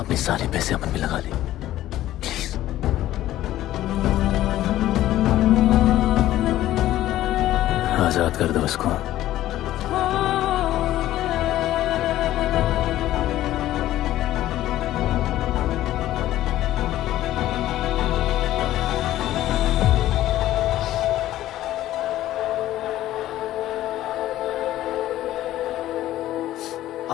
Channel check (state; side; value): quieter; right; 14.1 dB